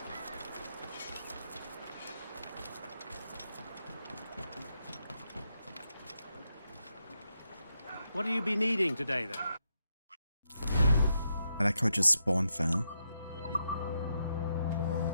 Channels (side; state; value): both; inverted; correlation -0.83